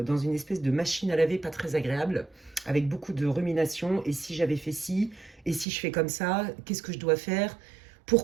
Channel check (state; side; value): drops out; left; at 5.7 s